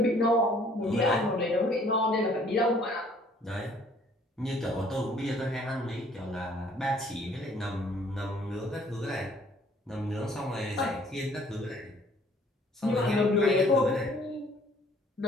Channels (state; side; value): normal; both; correlation 0.59